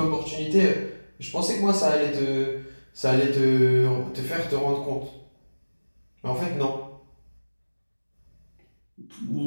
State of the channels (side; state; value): both; inverted; correlation -1.00